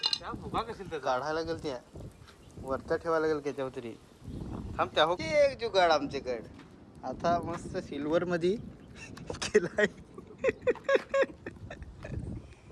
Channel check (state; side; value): identical; both; correlation 1.00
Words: काढायला गेल त्या वरता ठेवायला गेल त्याच्यावर तरी. थांब त्या हो एक जुगाड आमच्याकडे आता मस्त सिल्वर मध्ये केलाय.